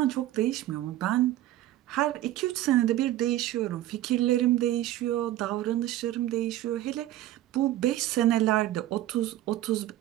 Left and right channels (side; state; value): left; quieter; 14.2 dB